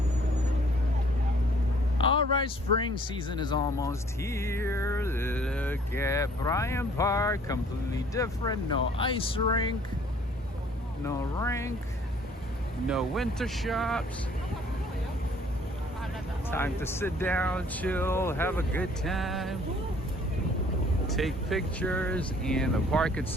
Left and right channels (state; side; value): normal; both; correlation 0.57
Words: All right, spring season is almost here. Look at Bryant Park, completely different. No ice rink, no winter shops. Time to sit down, chill, have a good time, take pictures, and the park